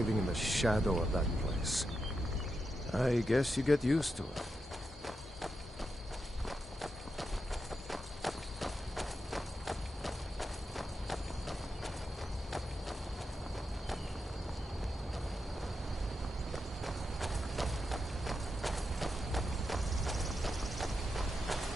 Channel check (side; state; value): both; normal; correlation 0.87